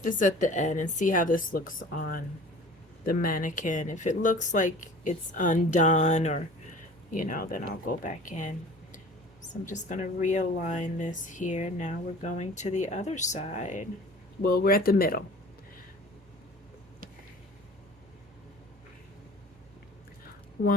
this at the end and see how this looks on the mannequin. If it looks like it's undone or, you know, then I'll go back in. So I'm just gonna realign this here. Now we're going to the other side. Well, we're at the middle.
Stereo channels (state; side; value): normal; both; correlation 0.44